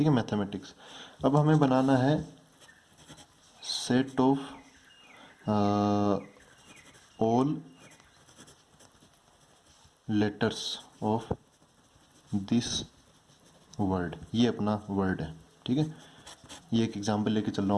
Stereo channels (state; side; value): identical; both; correlation 1.00